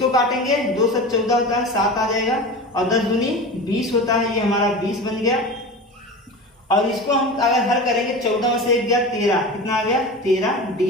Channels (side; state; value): both; normal; correlation 0.31